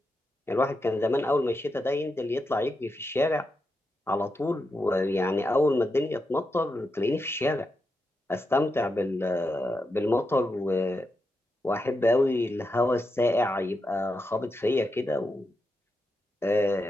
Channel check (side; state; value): both; normal; correlation 0.86